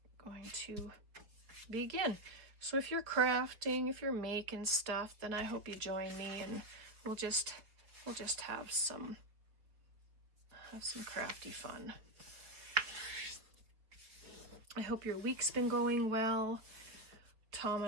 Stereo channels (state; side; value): late; left; 4.8 ms